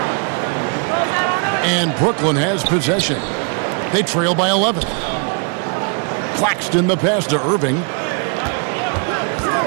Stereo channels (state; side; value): quieter; left; 39.2 dB